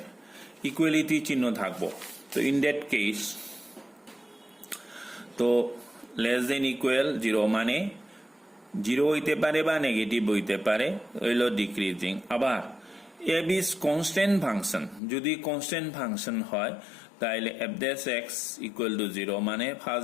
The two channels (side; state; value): right; drops out; at 15.0 s